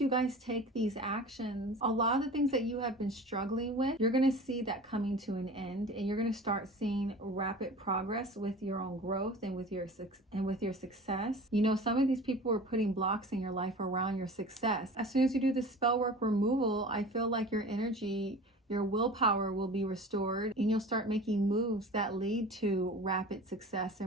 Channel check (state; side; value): normal; both; correlation 0.38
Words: guys take these actions, a lot of the things that you have been struggling with, you're going to see that coming to an end, and you're going to start seeing rapid progress with your own growth and with your success. Some of these people are putting blocks in your life around your success. As soon as you do the spell work removal, I feel like your energy, your willpower will be restored, and you'll start making moves that lead to rapid success